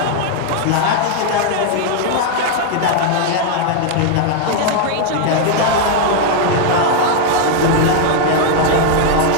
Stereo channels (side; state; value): both; different; correlation 0.00